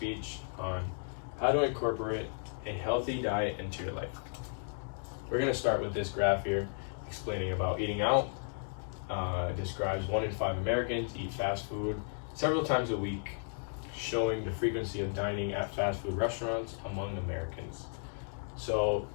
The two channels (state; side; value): silent; right; digital silence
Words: on how to incorporate a healthy diet into your life. We're going to start with this graph here explaining about eating out. It describes 1 in 5 Americans eat fast food several times a week, showing the frequency of dining at fast food restaurants among Americans. So